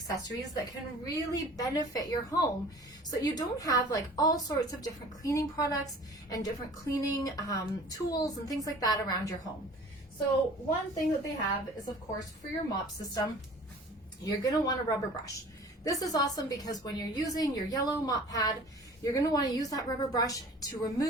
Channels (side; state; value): both; normal; correlation 0.46